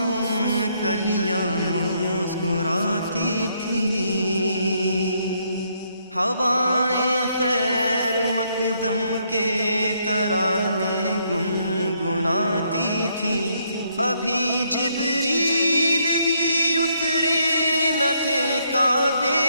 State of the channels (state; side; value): inverted; both; correlation -0.73